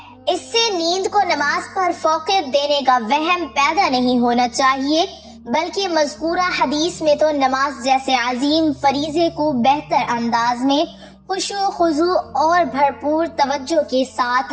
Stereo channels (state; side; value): identical; both; correlation 1.00